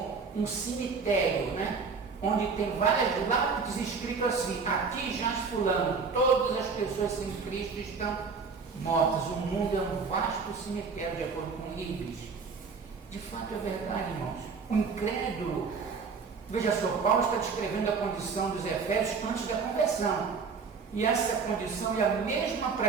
um cemitério, né? Onde tem várias lápides escritas assim: aqui jaz fulano, todas as pessoas sem Cristo estão mortas. O mundo é um vasto cemitério, de acordo com Libes. De fato é verdade, irmãos. O incrédulo, veja só, Paulo está descrevendo a condição dos efésios antes da conversão. E essa condição é a mesma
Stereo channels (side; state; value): left; quieter; 5.1 dB